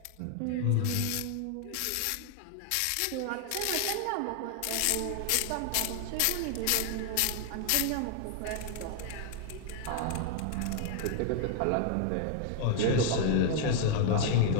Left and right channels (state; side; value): different; both; correlation 0.00